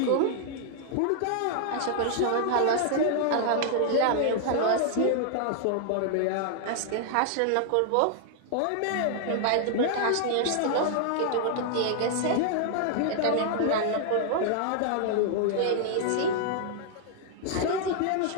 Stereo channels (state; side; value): different; both; correlation 0.00